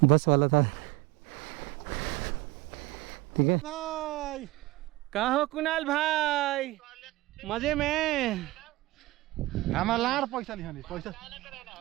बस वाला था। ठीक है भाई। कहाँ हो कुणाल भाई? मजे में? हमारा लाड़ पैसा नहीं पैसा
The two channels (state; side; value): quieter; left; 19.1 dB